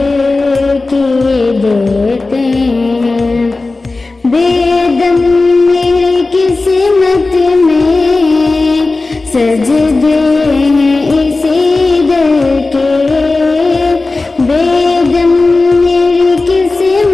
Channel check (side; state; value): right; quieter; 3.4 dB